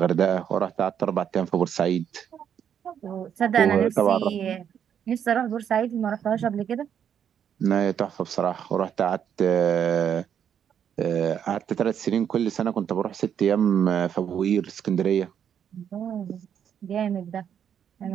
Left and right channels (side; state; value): left; quieter; 8.6 dB